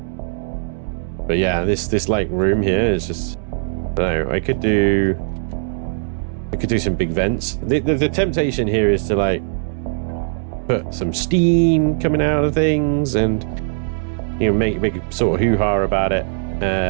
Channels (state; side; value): silent; left; digital silence